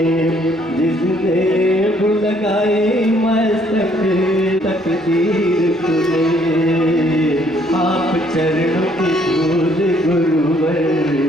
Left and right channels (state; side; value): normal; both; correlation 0.65